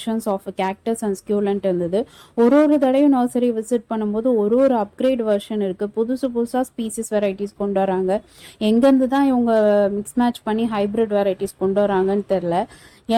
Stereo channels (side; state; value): both; identical; correlation 1.00